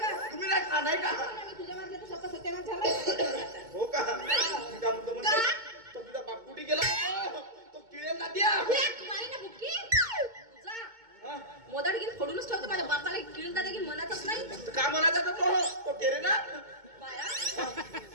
तुम्ही नाही खा नाही का. तुझ्या मारल्या तर स्वतः सत्यानाश झाला. हो का का म्हणतो म्हणजे तो तुझा बाप कुठे गेला तो किळेल ना द्या मारी ना बुक्की तुझा मोदाड घेऊन फोडूनच ठेवतो. माझ्या बापाला किळून दादा घेऊन म्हणतच नाही. का म्हणायचा तो केरे ना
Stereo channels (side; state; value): left; late; 2.2 ms